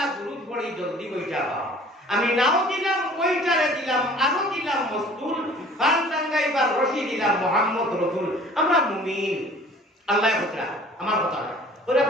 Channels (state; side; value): normal; both; correlation 0.49